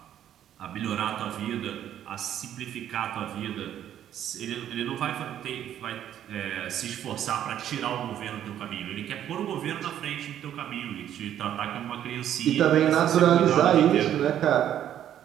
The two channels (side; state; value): left; quieter; 10.8 dB